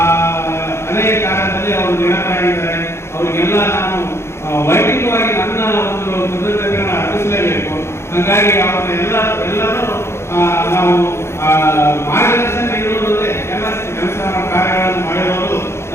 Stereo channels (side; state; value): right; late; 0.13 ms